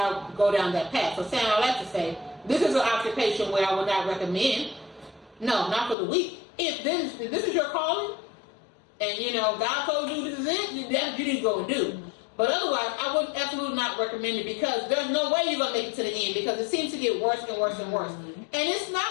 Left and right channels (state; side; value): drops out; right; at 6.0 s